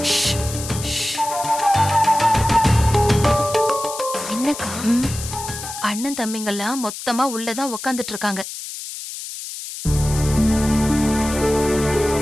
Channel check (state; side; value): noise; left; hiss, 9 dB below the sound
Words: என்னக்கா? அண்ணன் தம்பிங்கெல்லாம் மொத்தமா உள்ளதான் உக்காந்துட்டு இருக்காங்க.